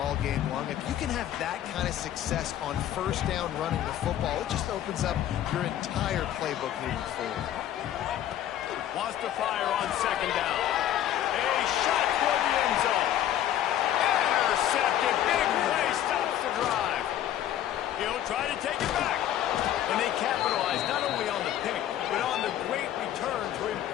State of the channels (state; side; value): quieter; right; 11.7 dB